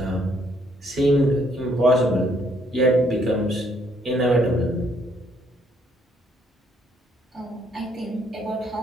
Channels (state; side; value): normal; both; correlation 0.68